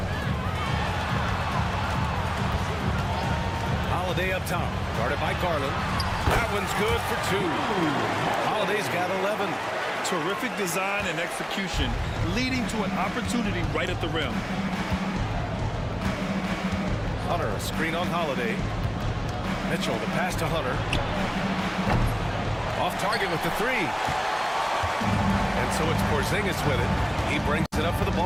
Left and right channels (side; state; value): both; identical; correlation 1.00